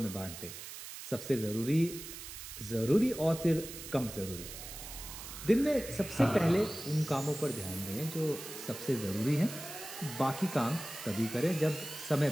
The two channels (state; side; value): noise; right; hiss, 11 dB below the sound